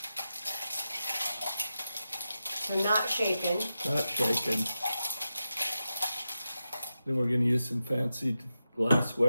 So not shaken. not shaken. Then we're going to use some fancy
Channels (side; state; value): both; inverted; correlation -0.90